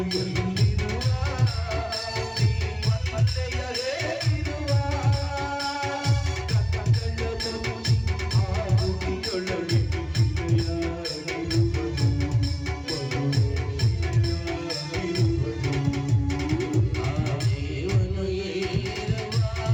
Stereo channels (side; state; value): both; identical; correlation 1.00